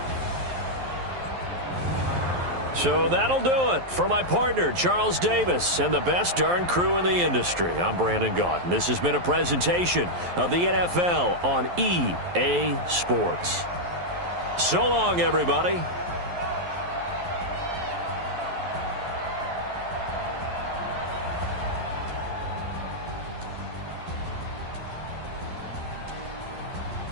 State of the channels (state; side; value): late; left; 11 ms